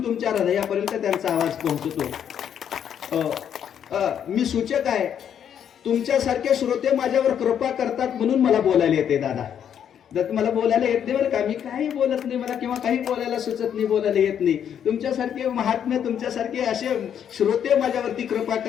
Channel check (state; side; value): quieter; right; 8.9 dB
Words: तुमच्या हृदयापर्यंत त्यांचा आवाज पोहोचतो. मी सूचक आहे, तुमच्यासारखे श्रोते माझ्यावर कृपा करतात म्हणून मला बोलायला येते. दादा मला बोलायला येत नाही बरं का. मी काही बोलत नाही, मला किंवा काही बोलायला सुचत नाही, बोलायला येत नाही. तुमच्यासारखे महात्मे, तुमच्यासारखे असे श्रोते माझ्यावरती कृपा